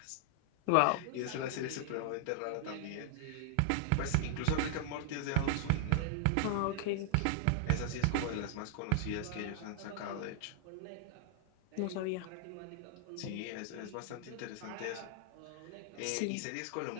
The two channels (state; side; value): different; both; correlation -0.01